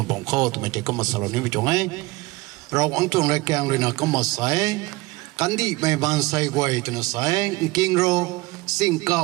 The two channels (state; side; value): quieter; left; 22.0 dB